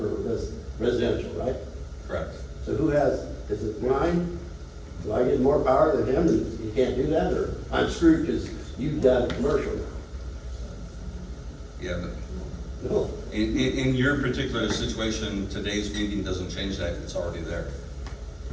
residential, right? Correct. So who has, is it mine? Do I get more power than him and you can't do that, or I'm screwed because you've got commercial now? Yeah, but No. in your particular situation, today's meeting doesn't change that, it's already there.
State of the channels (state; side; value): identical; both; correlation 1.00